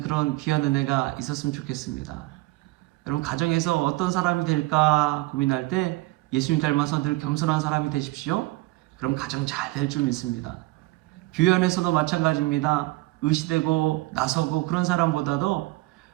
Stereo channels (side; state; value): left; quieter; 20.1 dB